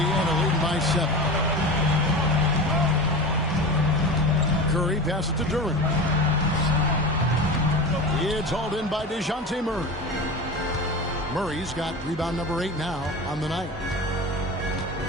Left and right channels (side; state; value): both; normal; correlation 0.29